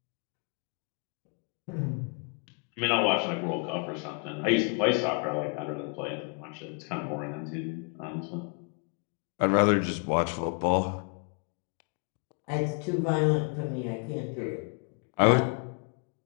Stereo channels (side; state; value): right; quieter; 37.6 dB